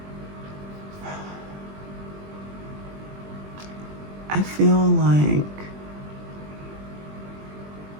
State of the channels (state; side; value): late; left; 20 ms